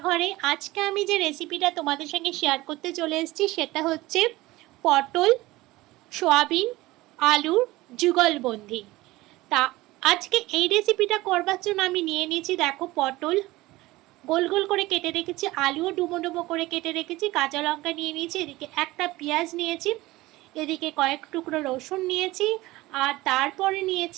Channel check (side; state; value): left; quieter; 19.0 dB